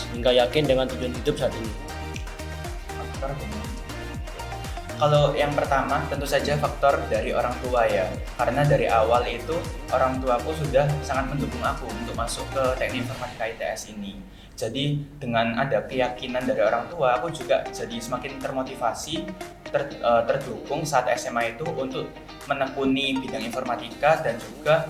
hingga yakin dengan tujuan hidup saat ini? Kalau yang pertama tentu saja faktor dari orang tua ya, karena dari awal itu orang tuaku sudah sangat mendukung aku untuk masuk ke teknik informatika ITS ini. Jadi dengan ada keyakinan dari orang tua, aku juga jadi semakin termotivasi, terdukung saat SMA itu untuk menekuni bidang informatika dan juga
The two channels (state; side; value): identical; both; correlation 1.00